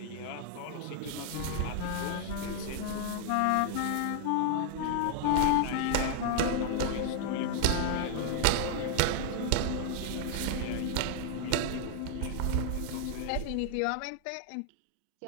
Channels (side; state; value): both; different; correlation 0.00